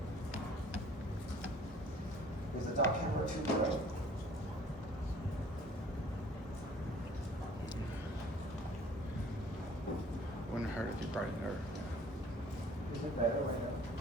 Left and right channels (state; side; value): normal; both; correlation 0.53